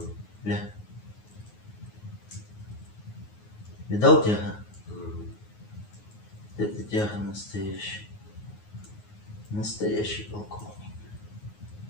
Ля. Видал тяга? Это тяга настоящая. Настоящий полковник.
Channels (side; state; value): right; late; 9.5 ms